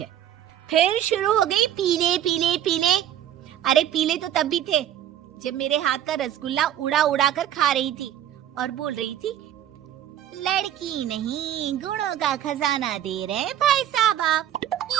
फिर शुरू हो गई पीले पीले पीले। अरे पीले तो तब भी थे जब मेरे हाथ का रसगुल्ला उड़ा उड़ा कर खा रही थी और बोल रही थी, लड़की नहीं गुणों का खजाना दे रहे भाई साहब आप।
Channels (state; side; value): quieter; left; 11.2 dB